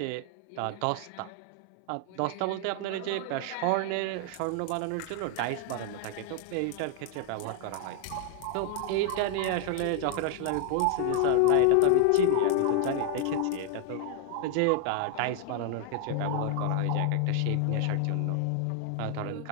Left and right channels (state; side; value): different; both; correlation 0.00